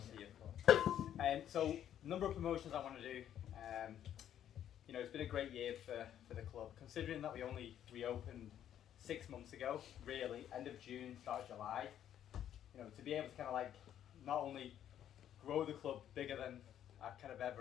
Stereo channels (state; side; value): quieter; right; 10.5 dB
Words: here for. So, number of promotions I want to do. You know, it's been a great year for the club, considering that we only reopened 6 months ago, really, end of June, start of July. You know, to be able to kind of like not only grow the club bigger than I kind of